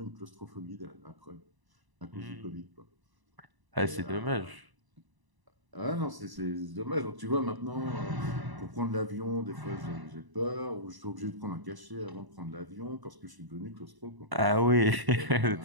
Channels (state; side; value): late; left; 1.0 ms